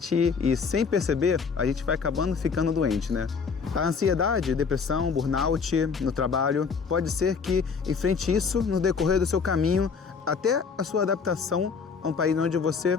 e, sem perceber, a gente vai acabando ficando doente, né? A ansiedade, depressão, burnout no trabalho, pode ser que enfrente isso no decorrer do seu caminho até a sua adaptação a um país onde você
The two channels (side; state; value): right; quieter; 5.5 dB